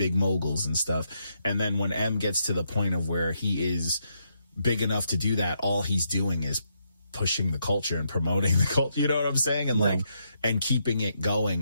moguls and stuff. And then when M gets to the point of where he is big enough to do that, all he's doing is pushing the culture and promoting the culture, you know what I'm saying? And like, and keeping it going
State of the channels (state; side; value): inverted; both; correlation -0.79